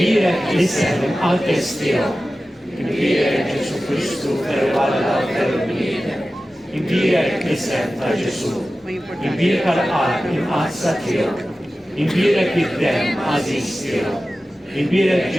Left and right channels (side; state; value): both; normal; correlation 0.95